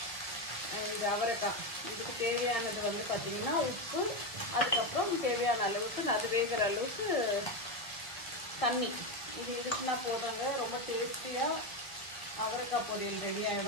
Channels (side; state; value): right; late; 1.0 ms